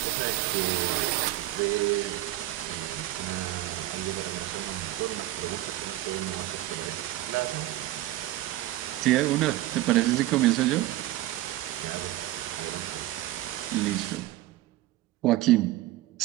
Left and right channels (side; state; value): left; quieter; 15.6 dB